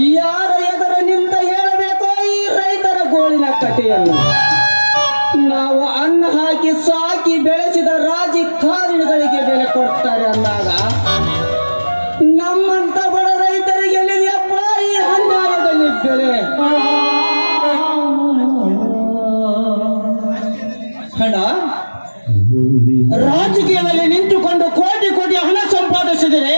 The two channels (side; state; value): both; inverted; correlation -1.00